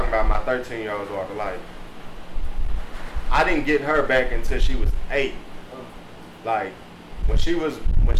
about, my 13-year-old daughter. Like, I didn't get her back until she was 8. Like, when she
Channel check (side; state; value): both; identical; correlation 1.00